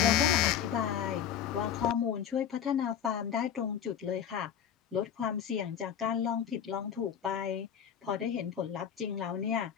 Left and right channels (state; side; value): quieter; right; 8.8 dB